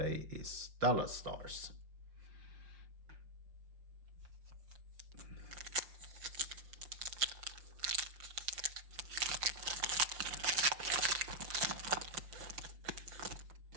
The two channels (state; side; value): late; left; 5.8 ms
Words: is Dallas Stars.